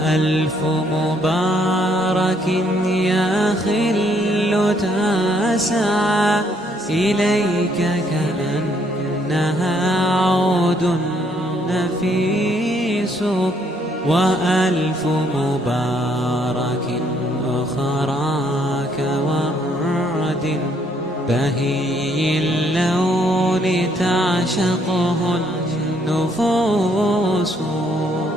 مبارك يا خل تسعى إليك كأنها عود نفيس، وألف مبارك أخرى كورد بهي اللون تعشقه النفوس.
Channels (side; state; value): both; normal; correlation 0.69